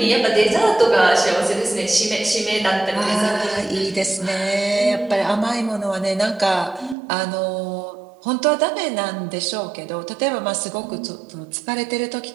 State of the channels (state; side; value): drops out; left; at 7.0 s